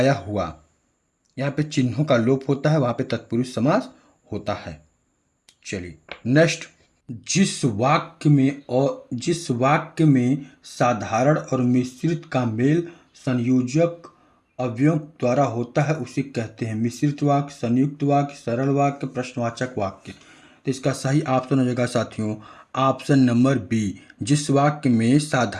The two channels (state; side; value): identical; both; correlation 1.00